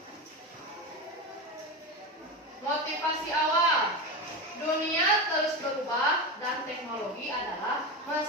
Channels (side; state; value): both; normal; correlation 0.20